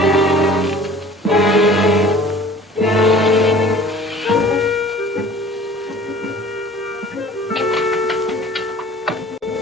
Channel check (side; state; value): both; normal; correlation 0.47